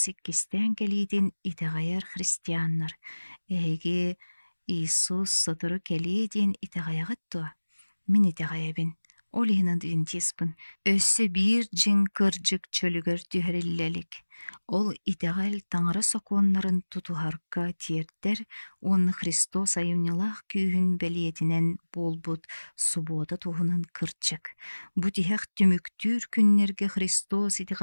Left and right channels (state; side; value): inverted; both; correlation -1.00